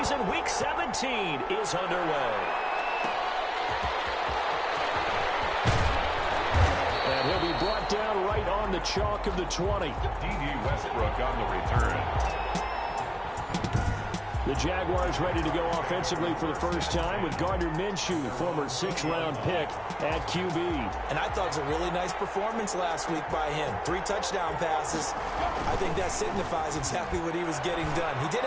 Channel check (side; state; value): both; identical; correlation 1.00